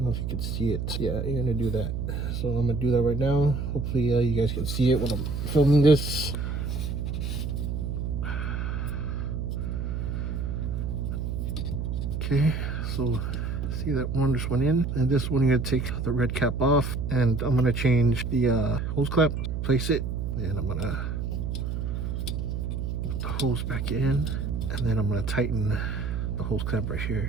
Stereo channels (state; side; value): noise; right; hum, 2 dB below the sound